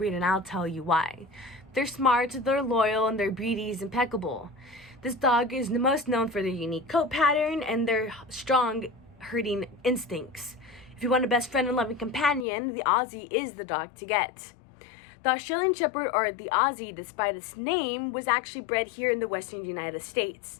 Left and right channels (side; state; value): right; drops out; at 12.5 s